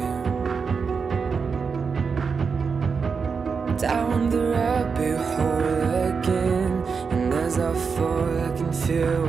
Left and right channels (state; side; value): quieter; left; 5.5 dB